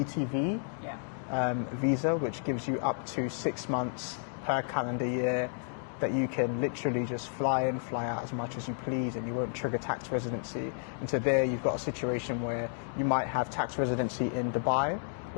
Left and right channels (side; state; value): right; silent; 57 dB below the other